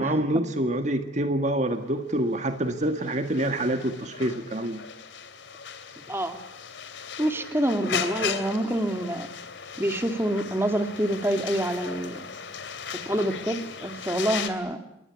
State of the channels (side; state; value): both; normal; correlation 0.60